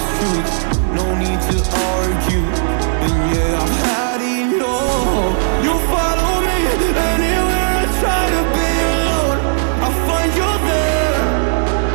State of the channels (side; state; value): left; silent; digital silence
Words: truth. No need to argue, and yeah, I've had enough. You follow me anywhere I try to be alone. I find you there.